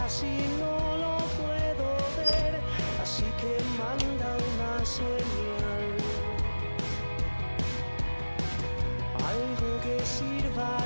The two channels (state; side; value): inverted; both; correlation -1.00